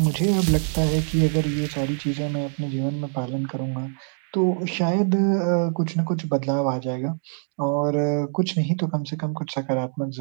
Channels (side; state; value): left; silent; 63 dB below the other